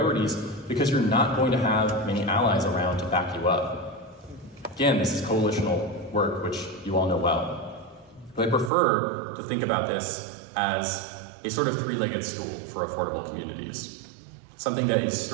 because you're not going to have many allies around to back you up. Again, this is coalitional work, which you all know well. But I prefer to think about this as a sort of 3-legged stool for affordable communities. Something that is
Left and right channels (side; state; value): left; drops out; at 8.7 s